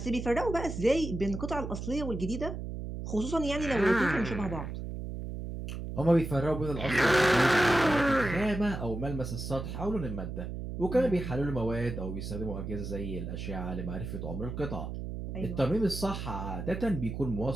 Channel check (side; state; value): right; noise; hum, 6 dB below the sound